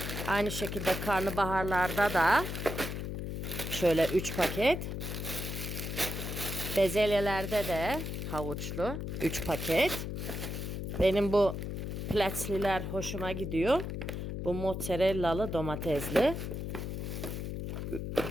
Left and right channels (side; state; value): left; noise; hum, 4 dB below the sound